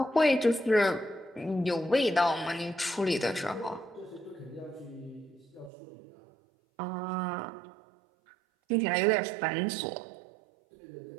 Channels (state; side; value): drops out; left; at 5.7 s